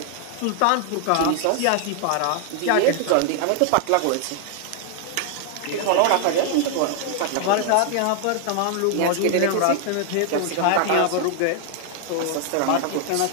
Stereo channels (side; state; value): both; different; correlation 0.00